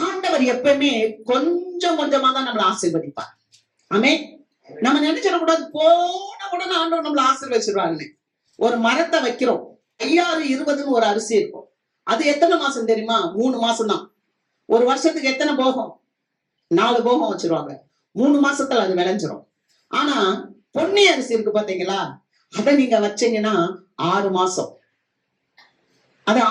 ஆண்டவர் எப்பவுமே கொஞ்சம் கொஞ்சமா தான் நம்மளை ஆசீர்வதிப்பார். ஆமென். நம்ம நினைச்சிடக்கூடாது போன உடனே ஆண்டவர் நம்மளை ஆசீர்வதிச்சிருவாங்கன்னு. ஒரு மரத்தை வைக்கிறோம், 5020 ஒரு அரிசி இருக்கும். அது எத்தனை மாசம் தெரியுமா? 3 மாசம் தான். ஒரு வருஷத்துக்கு எத்தனை போகம்? 4 போகம் வச்சிருவாங்க. 3 மாசத்துல அது விளைஞ்சிரும். ஆனா பொன்னி அரிசி இருக்கு பாத்தீங்களா, அதை நீங்க வச்சீங்கன்னா 6 மாசம். அது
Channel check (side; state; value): both; identical; correlation 1.00